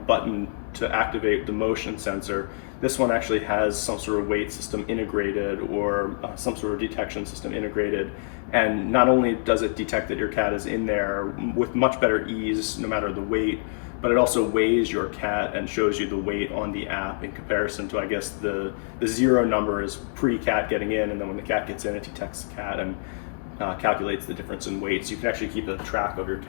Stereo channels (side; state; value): right; silent; digital silence